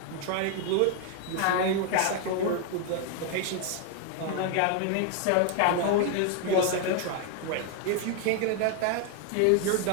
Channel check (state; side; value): different; both; correlation 0.00